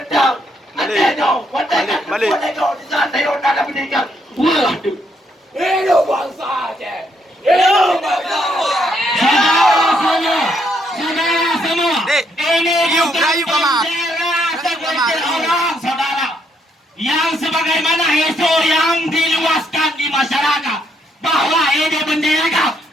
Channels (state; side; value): normal; both; correlation 0.73